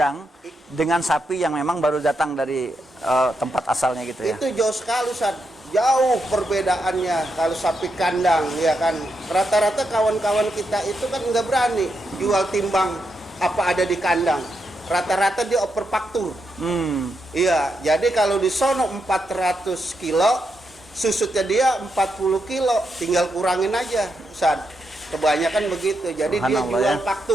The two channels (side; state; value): both; normal; correlation 0.83